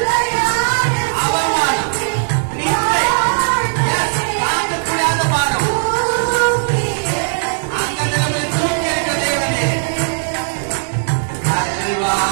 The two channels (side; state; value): left; silent; 68 dB below the other